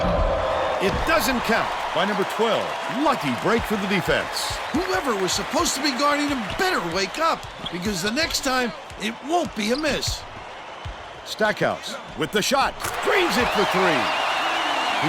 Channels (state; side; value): identical; both; correlation 1.00